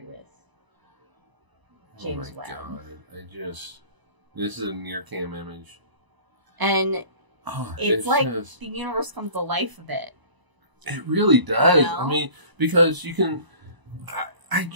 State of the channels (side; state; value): left; late; 1.0 ms